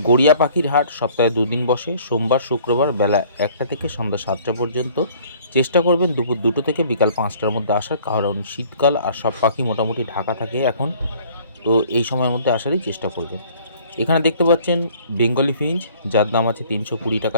গড়িয়া পাখির হাট সপ্তাহে দুদিন বসে, সোমবার শুক্রবার বেলা 1টা থেকে সন্ধ্যা 7টা পর্যন্ত। চেষ্টা করবেন দুপুর 2টো থেকে বিকাল 5টার মধ্যে আসার, কারণ শীতকাল আর সব পাখি মোটামুটি ঢাকা থাকে এখন, তো এই সময়ের মধ্যে আসারই চেষ্টা করবেন। এখানে দেখতে পাচ্ছেন বেঙ্গলি ফিঞ্চ, যার দাম আছে 320 টাকা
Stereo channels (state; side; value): inverted; both; correlation -0.55